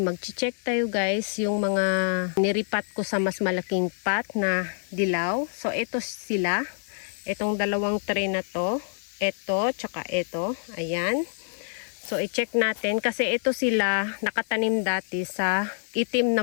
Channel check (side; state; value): right; silent; digital silence